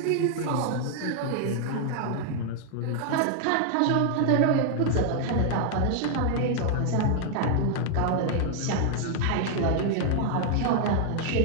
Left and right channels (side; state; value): both; different; correlation 0.00